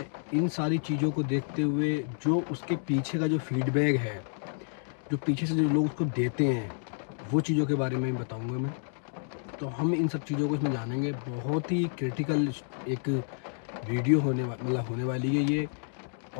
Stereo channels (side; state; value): right; silent; digital silence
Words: इन सारी चीज़ों को देखते हुए जो उसके पीछे का जो फीडबैक है, जो पीछे से जो लोग उसको देते हैं, वो चीज़ों के बारे में बताऊंगा मैं। तो हम इन सब चीज़ों को इसमें जानेंगे। बहुत ही क्रिटिकल एक वीडियो होने वाली है ये।